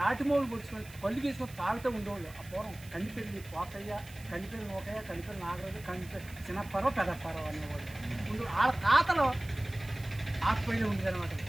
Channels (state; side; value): noise; right; hiss, 20 dB below the sound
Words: మొగ్గులు పొడుచుకొని, కళ్ళు తీసుకొని తాగుతూ ఉండేవాళ్ళు. ఆ పూర్వం కండిపెల్లి పోకయ్య, కండిపెల్లి నోకయ్య, కండిపెల్లి నాగరాజు, కండిపెల్లి చిన్నప్పరో పెద్దప్పరో అనేవాళ్ళు ఉండు. వాళ్ళ తాతలో ఆకుపైన ఉండేదన్నమాట.